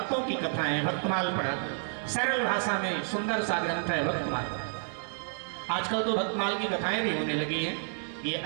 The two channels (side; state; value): left; silent; digital silence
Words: की कथाएं, भक्तमाल पढ़ा करो। सरल भाषा में सुंदर सा ग्रंथ है भक्तमाल। आजकल तो भक्तमाल की कथाएं भी होने लगी हैं, ये